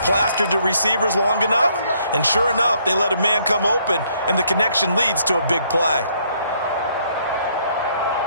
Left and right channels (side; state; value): both; inverted; correlation -0.68